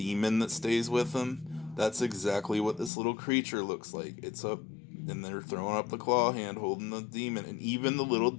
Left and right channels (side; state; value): right; drops out; at 2.9 s